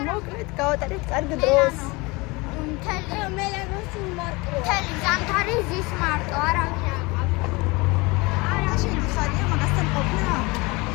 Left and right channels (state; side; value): quieter; right; 24.9 dB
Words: მოკლედ გავატარებთ კარგ დროს. მთელი ზამთარი ზის მარტო, არავინ არ ყავს. არა, შეგიხარია მაგასთან ყოფნა?